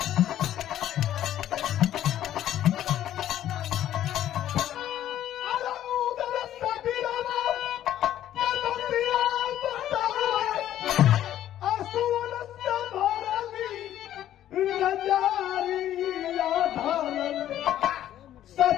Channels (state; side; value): quieter; right; 12.0 dB